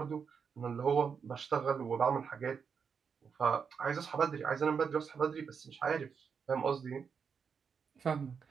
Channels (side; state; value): left; quieter; 6.3 dB